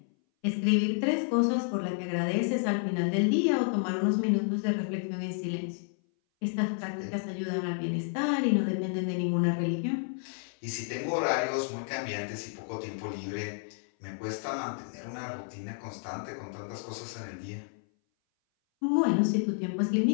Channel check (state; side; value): silent; right; 57 dB below the other